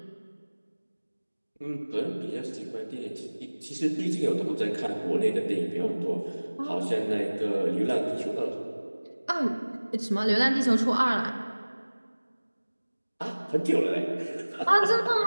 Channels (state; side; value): inverted; both; correlation -1.00